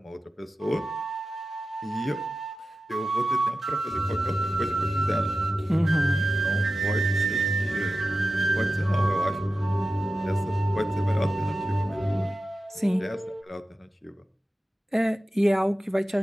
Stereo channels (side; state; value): both; normal; correlation 0.94